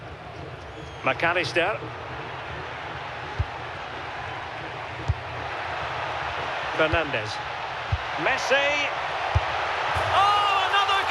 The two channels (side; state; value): both; identical; correlation 1.00